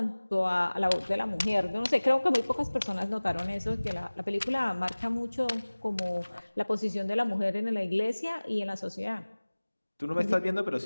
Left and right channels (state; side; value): inverted; both; correlation -1.00